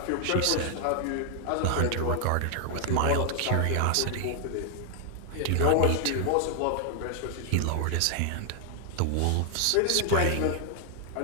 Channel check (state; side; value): different; both; correlation 0.00